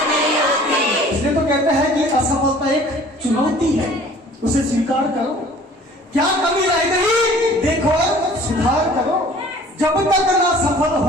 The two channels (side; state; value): both; normal; correlation 0.50